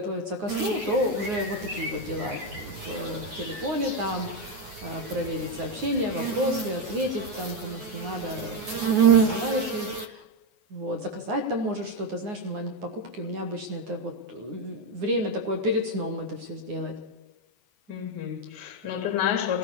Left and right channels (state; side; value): late; left; 9.6 ms